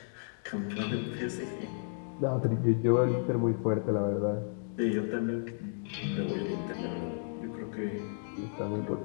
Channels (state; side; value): silent; right; digital silence